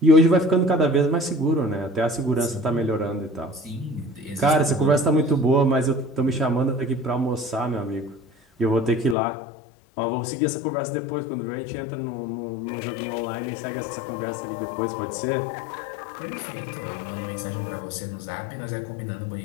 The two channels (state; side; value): drops out; right; at 9.2 s